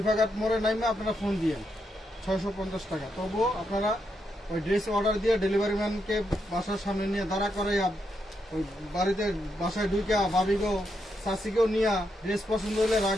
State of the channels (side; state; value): both; normal; correlation 0.81